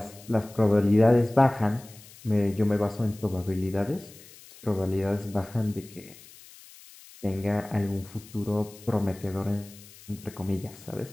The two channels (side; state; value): left; noise; hiss, 21 dB below the sound